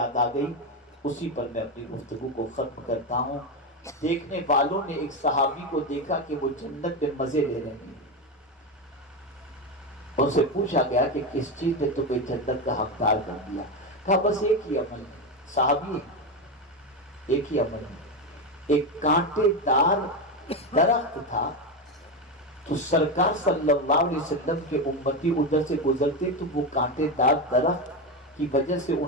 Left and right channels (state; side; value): normal; both; correlation 0.13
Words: آ گئی، اسی پر میں اپنی گفتگو کو ختم کرتا ہوں۔ دیکھنے والوں نے ایک صحابی کو دیکھا کہ وہ جنت میں مزے لے رہے ہیں، ان سے پوچھا گیا کہ کس چیز نے تمہیں جنت کا حقدار کر دیا؟ کہا بس ایک ہی عمل ہے، صحابی ایک ہی عمل ہے۔ ایک کانٹے دار درخت تھا، تو سرکار صلی اللہ علیہ وسلم کے امتی ادھر سے گزرتے تو وہ کانٹے دار درخت کی وجہ سے